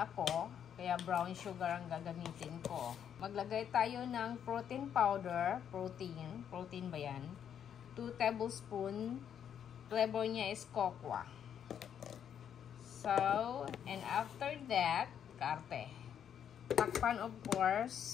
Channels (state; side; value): quieter; right; 8.8 dB